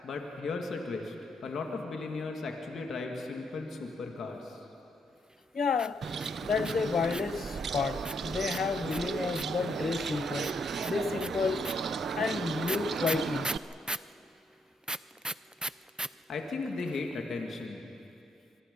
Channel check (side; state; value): both; normal; correlation 0.75